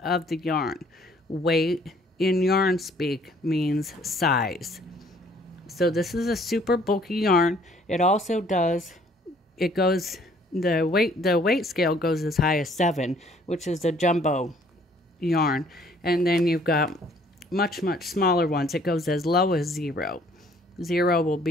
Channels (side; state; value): both; normal; correlation 0.60